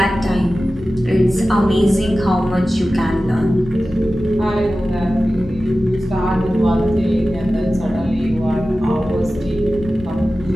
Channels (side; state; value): left; noise; rumble, 17 dB below the sound